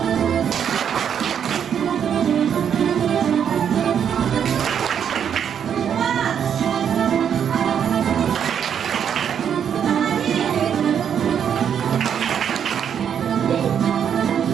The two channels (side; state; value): left; quieter; 8.3 dB